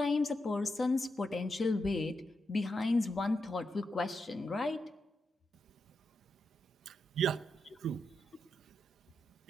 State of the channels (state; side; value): normal; both; correlation 0.86